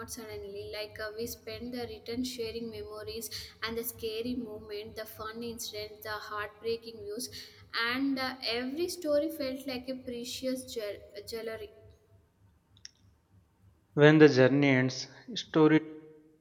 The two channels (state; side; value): identical; both; correlation 1.00